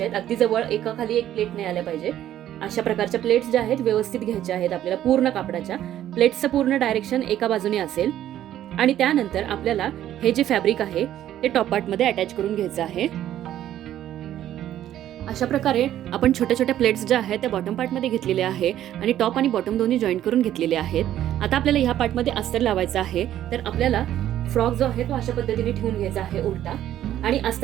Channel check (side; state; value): left; quieter; 12.0 dB